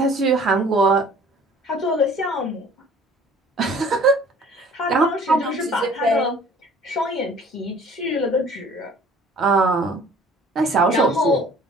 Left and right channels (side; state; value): both; normal; correlation 0.51